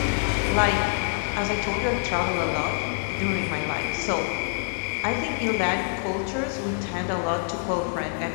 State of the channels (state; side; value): silent; right; 57 dB below the other